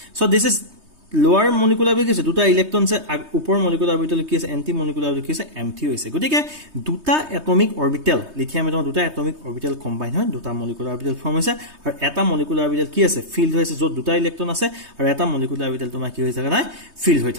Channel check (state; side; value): late; left; 3.2 ms